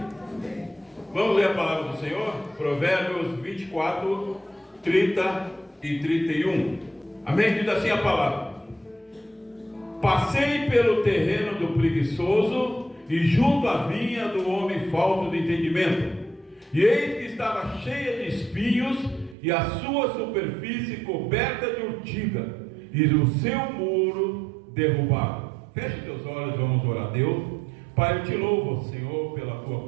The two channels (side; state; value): left; drops out; at 19.4 s